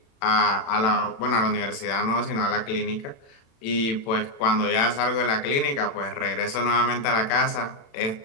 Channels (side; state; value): right; late; 36 ms